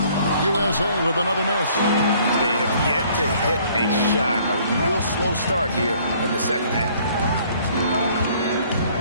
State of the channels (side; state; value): both; inverted; correlation -0.59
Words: USA with another miss. They have yet to hit a shot. A real slow start here in the second half.